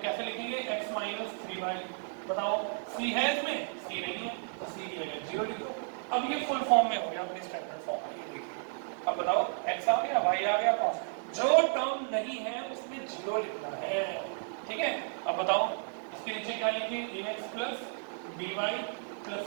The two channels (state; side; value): silent; left; 56 dB below the other